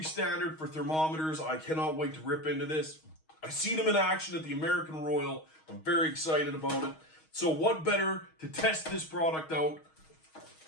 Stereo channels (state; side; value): late; right; 6.3 ms